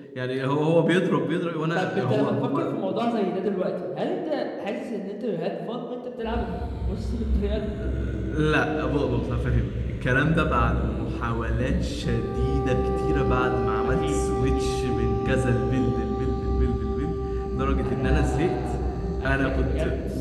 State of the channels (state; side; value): identical; both; correlation 1.00